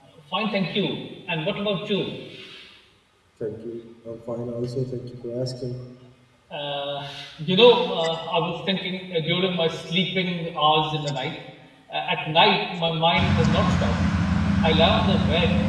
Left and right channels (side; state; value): both; identical; correlation 1.00